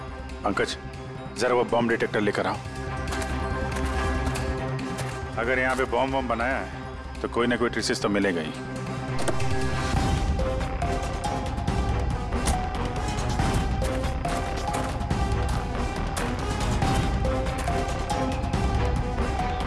पंकज, जरा वो बॉम्ब डिटेक्टर लेकर आओ। अगर यहाँ पे बॉम्ब बनाया है तो कोई ना कोई ट्रेसेस तो मिलेगा ही।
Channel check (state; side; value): identical; both; correlation 1.00